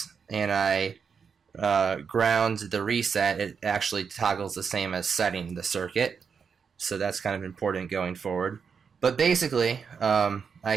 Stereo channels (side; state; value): left; quieter; 6.2 dB